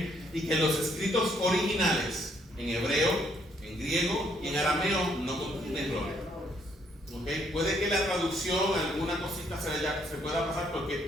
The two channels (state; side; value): normal; both; correlation 0.69